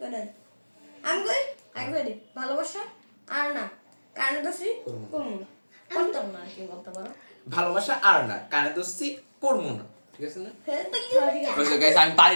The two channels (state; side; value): inverted; both; correlation -1.00